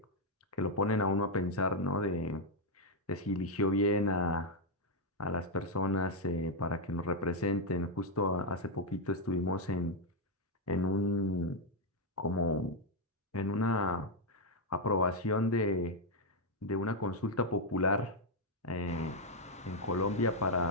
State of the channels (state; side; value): normal; both; correlation 0.00